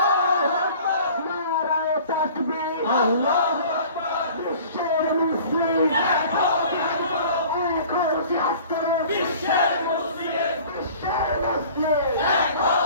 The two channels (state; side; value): inverted; both; correlation -0.46